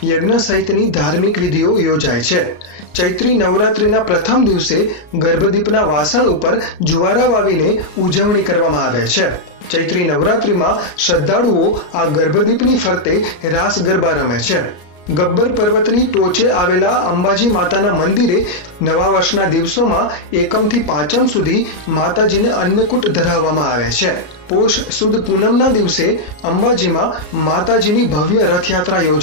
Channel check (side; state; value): right; late; 34 ms